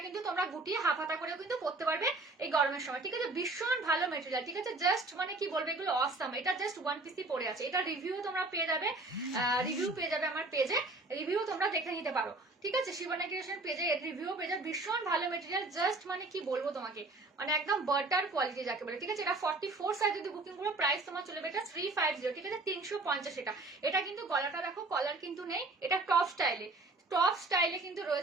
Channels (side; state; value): left; quieter; 3.1 dB